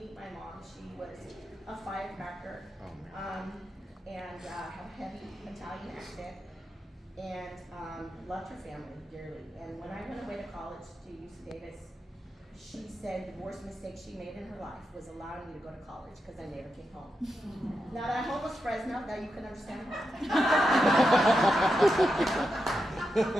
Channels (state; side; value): normal; both; correlation 0.87